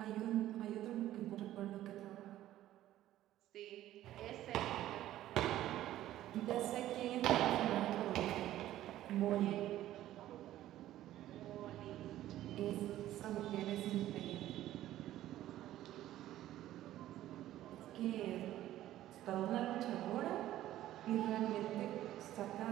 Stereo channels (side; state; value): left; quieter; 13.7 dB